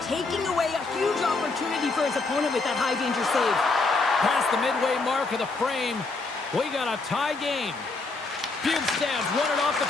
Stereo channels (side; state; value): right; quieter; 3.7 dB